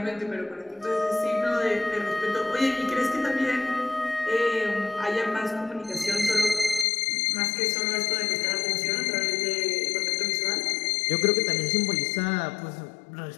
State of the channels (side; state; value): right; drops out; at 6.9 s